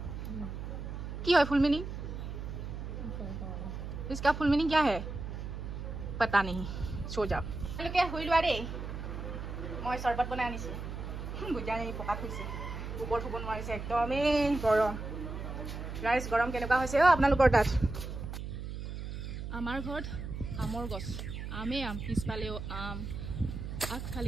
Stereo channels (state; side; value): noise; right; hum, 7 dB below the sound